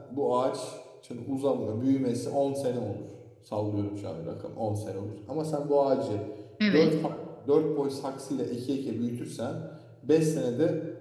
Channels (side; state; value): both; identical; correlation 1.00